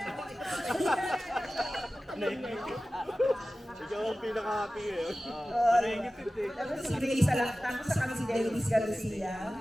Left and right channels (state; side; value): normal; both; correlation 0.96